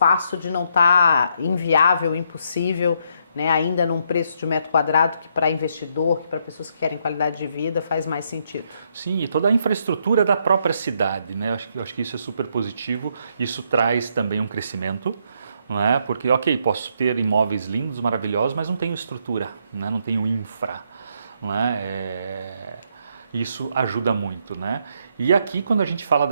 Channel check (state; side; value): inverted; both; correlation -0.74